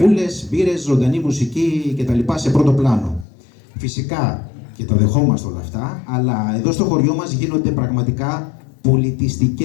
μπύρες, ζωντανή μουσική κτλ. Σε πρώτο πλάνο. Φυσικά, και τα δεχόμαστε όλα αυτά, αλλά εδώ στο χωριό μας γίνονται πραγματικά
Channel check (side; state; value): right; drops out; at 3.2 s